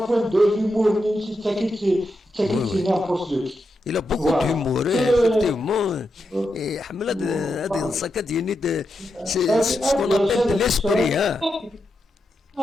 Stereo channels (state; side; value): normal; both; correlation 0.86